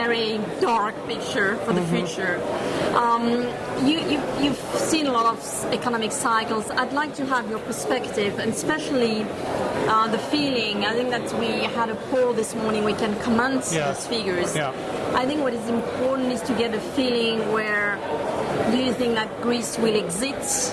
dark picture for the future. You've seen a lot of economic cycles. I'd like to have your perspective, and especially the feeling. I think that we had a poll this morning. We can comment those figures. Yeah. I think what is important is to get a feeling where do you think that Greece will exit?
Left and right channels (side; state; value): both; identical; correlation 1.00